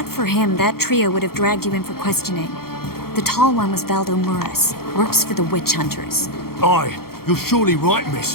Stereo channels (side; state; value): right; late; 0.94 ms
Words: for him, that trio would have dragged you in for questioning. The tall one was Valdo Muras, works for the witch hunters. Aye, you're surely right,